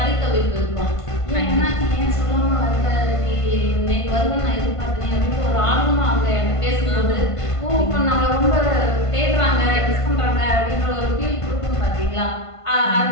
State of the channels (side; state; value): right; late; 1.5 ms